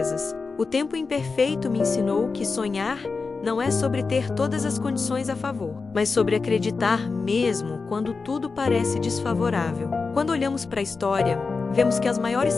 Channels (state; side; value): quieter; right; 4.4 dB